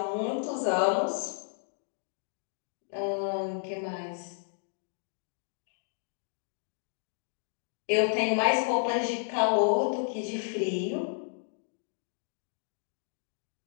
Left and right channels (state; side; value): silent; right; digital silence